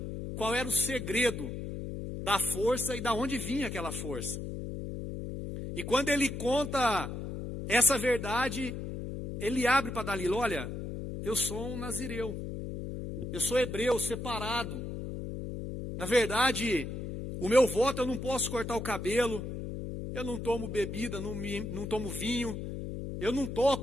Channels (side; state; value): left; noise; hum, 6 dB below the sound